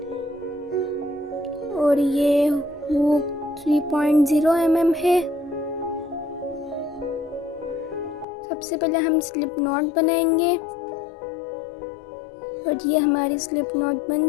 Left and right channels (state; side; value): drops out; right; at 8.2 s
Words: और ये हुक 3.0 mm है। सबसे पहले हम स्लिप नॉट बनाएंगे और ये हमारी स्लिप नॉट बन